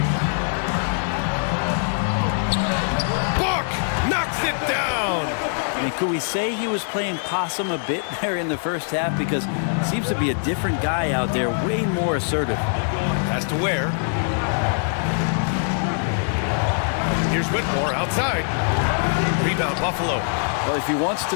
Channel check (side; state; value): right; silent; 64 dB below the other